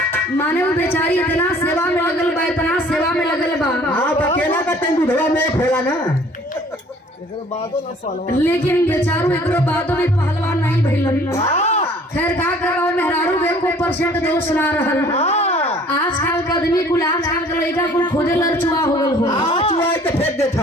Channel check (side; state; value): both; normal; correlation 0.54